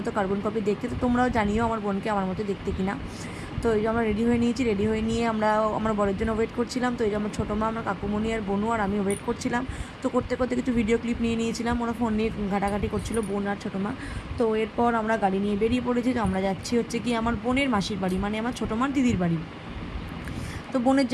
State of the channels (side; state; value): both; identical; correlation 1.00